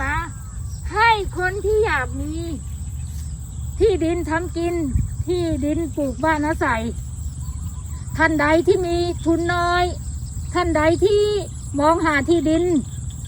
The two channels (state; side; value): identical; both; correlation 1.00